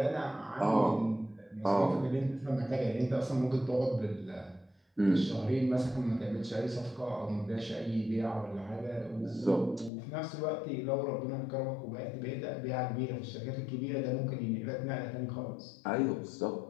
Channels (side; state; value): right; drops out; at 9.9 s